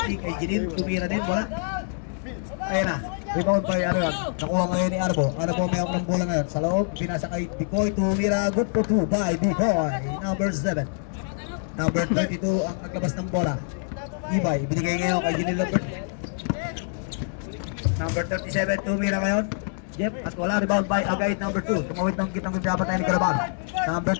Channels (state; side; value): silent; right; digital silence